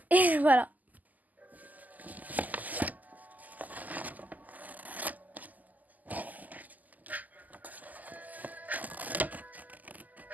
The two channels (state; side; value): late; left; 0.081 ms